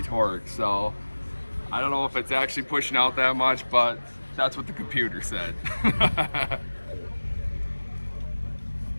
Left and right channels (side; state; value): both; inverted; correlation -1.00